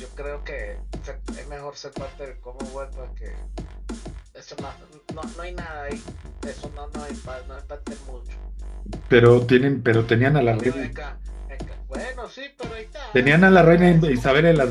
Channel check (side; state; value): both; identical; correlation 1.00